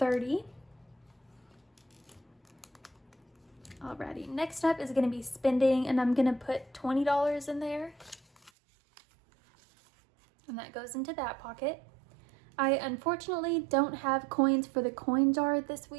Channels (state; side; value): drops out; left; at 8.5 s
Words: Alrighty, next up is going to be spending, and I'm going to put $20 in there. And that goes into that pocket. I unfortunately don't have coins for the coin jar this